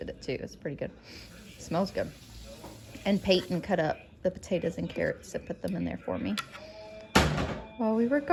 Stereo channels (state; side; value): identical; both; correlation 1.00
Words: it too. It's pretty good. It smells good. And Payton cut up the potatoes and carrots and put them in there for me. While we were